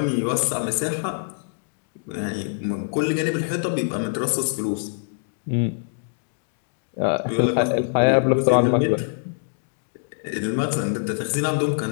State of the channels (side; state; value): right; silent; digital silence